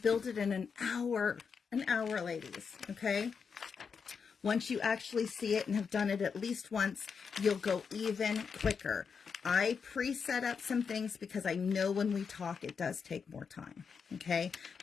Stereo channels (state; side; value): quieter; right; 6.0 dB